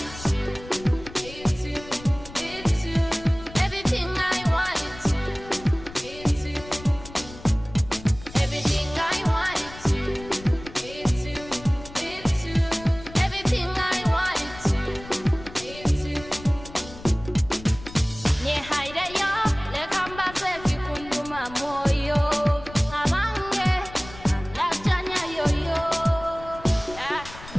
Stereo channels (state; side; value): noise; left; rumble, 16 dB below the sound